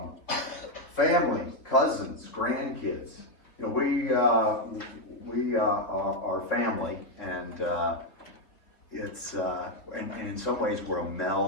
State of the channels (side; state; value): right; late; 3.6 ms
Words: Family, cousins, grandkids. We are family, and it's and in some ways we're a